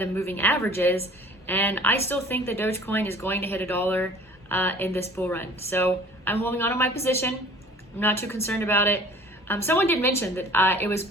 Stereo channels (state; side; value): normal; both; correlation 0.48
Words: moving averages, and I still think that Dogecoin is going to hit $1 in this bull run. So I'm holding on to my position. I'm not too concerned about it. Someone did mention that it was